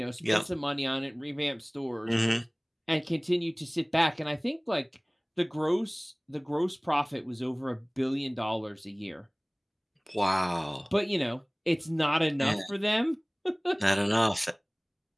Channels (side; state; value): both; identical; correlation 1.00